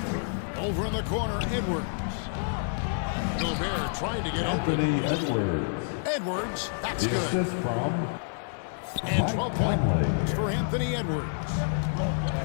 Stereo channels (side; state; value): right; silent; 59 dB below the other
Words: Over in the corner, Edwards. Gobert trying to get Anthony open. Edwards. Edwards, that's The good. assist from And 12 points for Anthony Edwards.